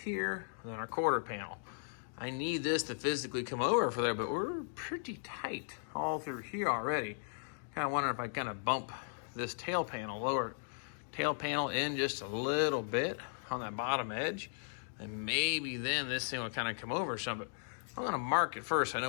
and then our quarter panel. I need this to physically come over for there, but we're pretty tight all through here already. Kind of wondering if I kind of bump this tail panel, lower tail panel in just a little bit on that bottom edge, and maybe then this thing will kind of come over some. But I'm gonna mark it first. I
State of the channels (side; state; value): right; silent; digital silence